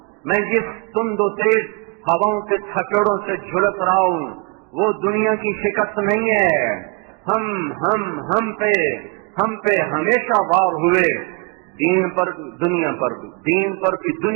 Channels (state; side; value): quieter; left; 31.1 dB